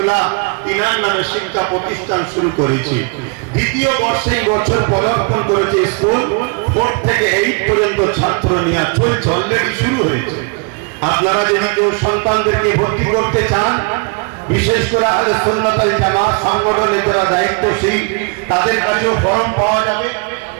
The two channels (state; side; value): quieter; left; 32.7 dB